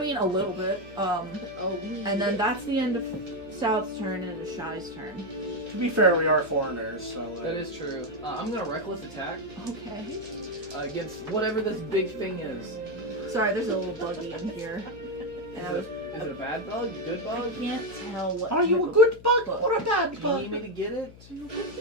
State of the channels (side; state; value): left; noise; hum, 19 dB below the sound